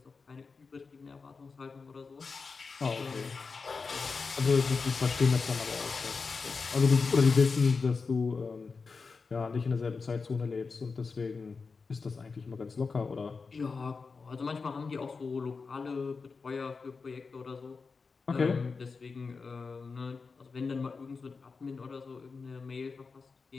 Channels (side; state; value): right; quieter; 4.7 dB